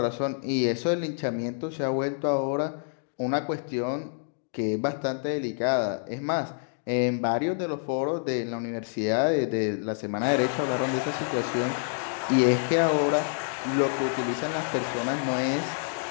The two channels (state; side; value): silent; right; digital silence